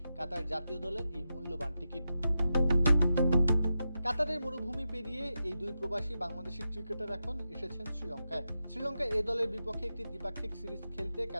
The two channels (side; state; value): both; inverted; correlation -0.89